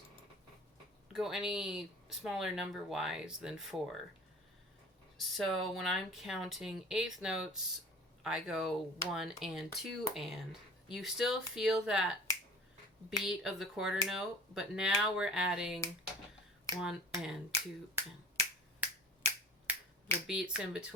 go any smaller number-wise than 4. So when I'm counting eighth notes, I go 1 and 2 and. You still feel that beat of the quarter note, but now we're adding 1 and 2 and the beats in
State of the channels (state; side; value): normal; both; correlation 0.42